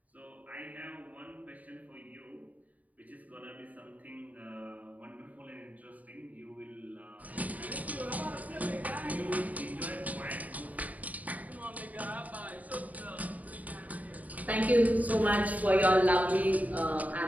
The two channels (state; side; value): late; left; 0.074 ms